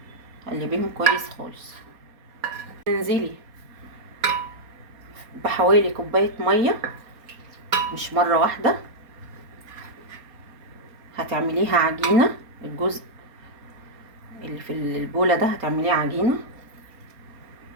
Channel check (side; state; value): left; late; 4.3 ms